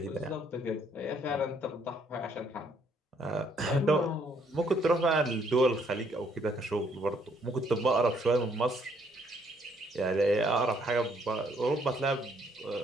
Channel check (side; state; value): both; normal; correlation 0.68